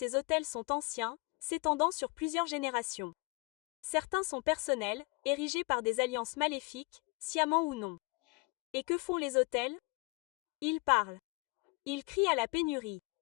autels sont anciens, s'étendant sur plusieurs générations. Certains sont personnels, érigés par des alliances maléfiques, sciemment ou non. Et que font les autels? Ils parlent. Ils crient à la pénurie.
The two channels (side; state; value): right; quieter; 28.4 dB